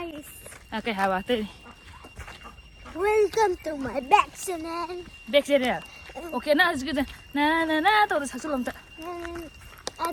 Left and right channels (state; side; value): identical; both; correlation 1.00